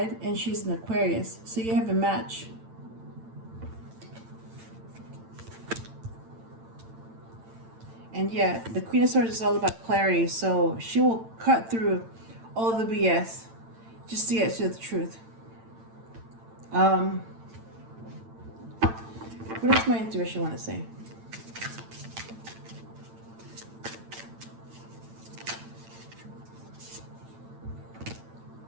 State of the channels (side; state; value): left; late; 8.9 ms